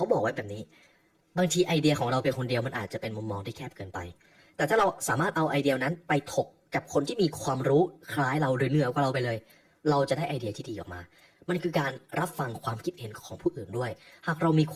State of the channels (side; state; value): both; identical; correlation 1.00